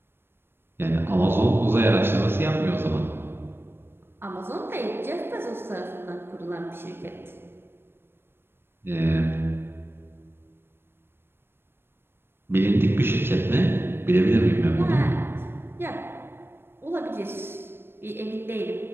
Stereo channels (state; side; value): late; left; 0.11 ms